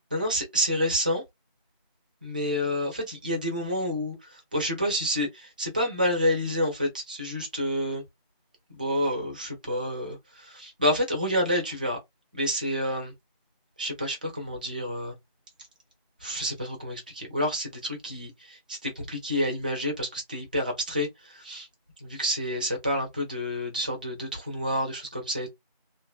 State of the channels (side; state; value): both; inverted; correlation -0.42